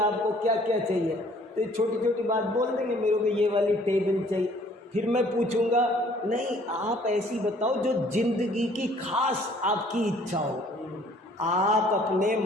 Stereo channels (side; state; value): both; normal; correlation 0.58